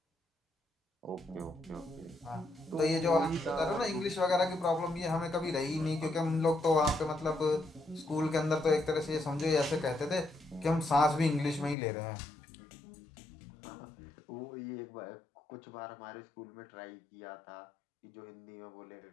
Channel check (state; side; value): drops out; right; at 11.8 s